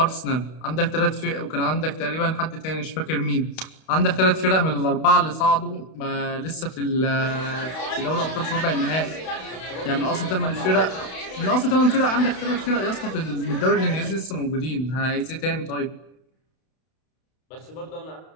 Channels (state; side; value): late; right; 32 ms